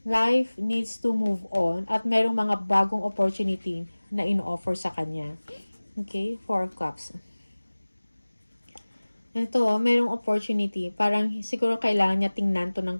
life needs to move on at merong mga bagong opportunity na in-offer sa kanya. Okay? Four of Cups. Ito, merong opportunity. Parang siguro kailangan niya tingnan to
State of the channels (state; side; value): inverted; both; correlation -1.00